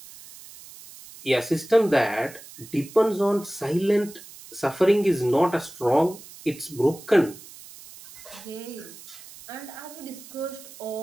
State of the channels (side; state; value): right; noise; hiss, 18 dB below the sound